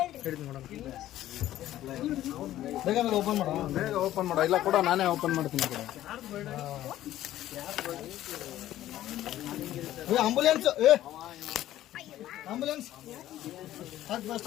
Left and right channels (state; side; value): quieter; right; 13.6 dB